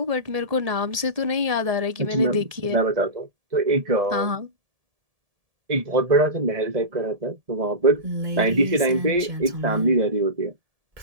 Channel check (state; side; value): late; left; 1.7 ms